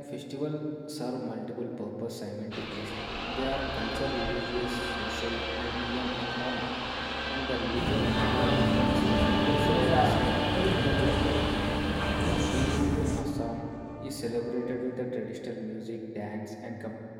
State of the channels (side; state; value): both; identical; correlation 1.00